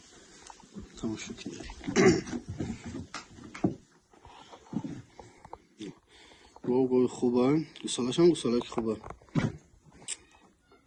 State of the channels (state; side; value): identical; both; correlation 1.00